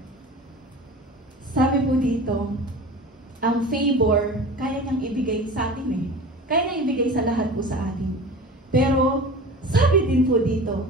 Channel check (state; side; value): normal; both; correlation 0.36